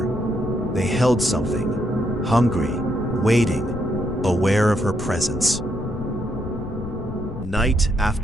They held something, hungry, waiting, aware of her presence. Night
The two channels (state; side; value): noise; left; rumble, 10 dB below the sound